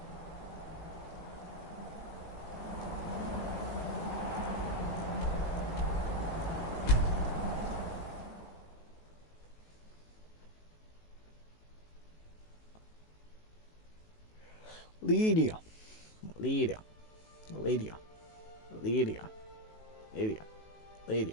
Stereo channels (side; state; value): right; late; 19 ms